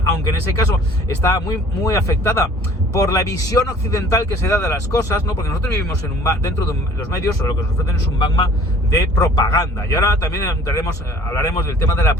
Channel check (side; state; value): both; normal; correlation 0.51